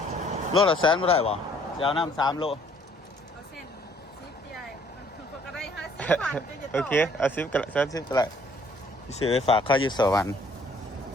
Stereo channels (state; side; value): normal; both; correlation 0.61